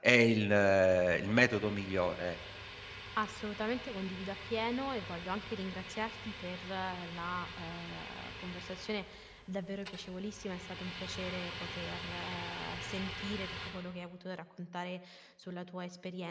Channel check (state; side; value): identical; both; correlation 1.00